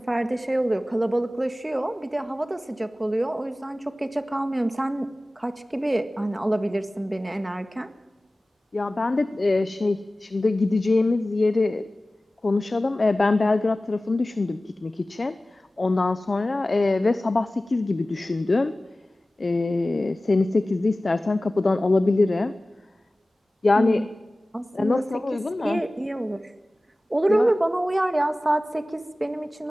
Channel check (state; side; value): normal; both; correlation 0.97